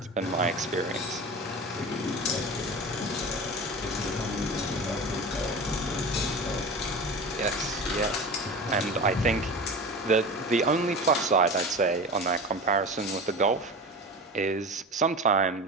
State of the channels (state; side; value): normal; both; correlation 0.31